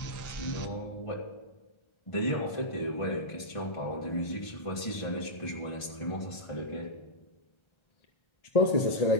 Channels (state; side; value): late; right; 1.5 ms